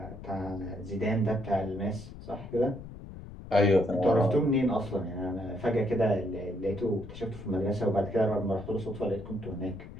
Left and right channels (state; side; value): noise; left; rumble, 13 dB below the sound